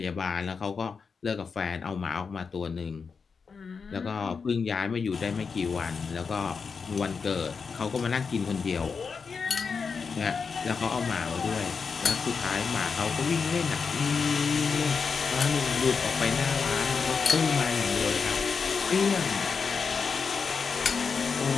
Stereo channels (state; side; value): quieter; right; 5.4 dB